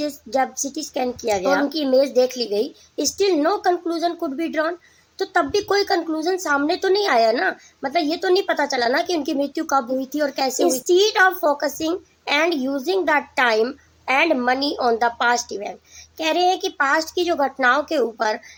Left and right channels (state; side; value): identical; both; correlation 1.00